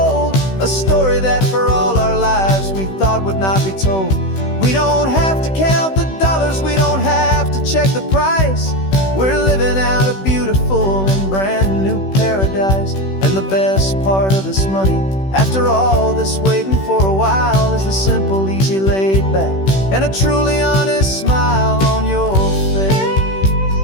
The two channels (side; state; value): right; late; 16 ms